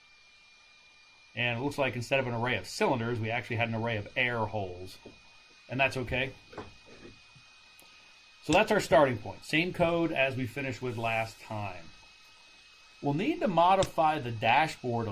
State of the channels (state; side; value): identical; both; correlation 1.00